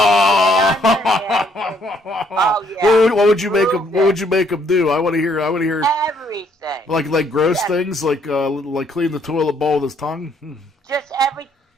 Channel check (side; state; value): both; normal; correlation 0.67